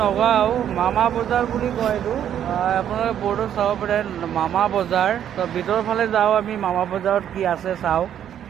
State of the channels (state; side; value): quieter; left; 10.0 dB